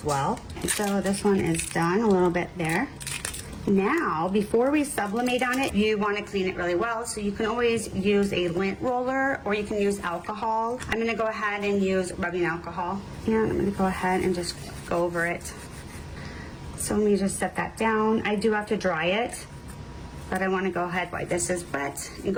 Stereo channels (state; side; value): identical; both; correlation 1.00